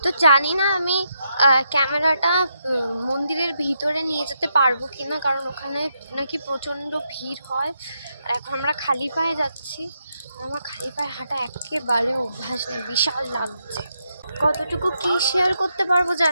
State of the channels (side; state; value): both; inverted; correlation -0.81